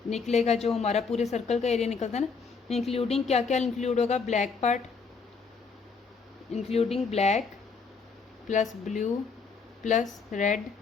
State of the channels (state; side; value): quieter; right; 5.0 dB